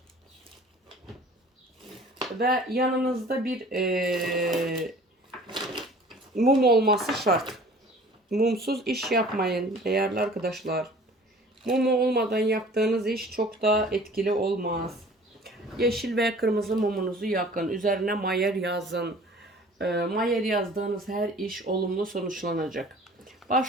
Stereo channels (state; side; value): normal; both; correlation 0.48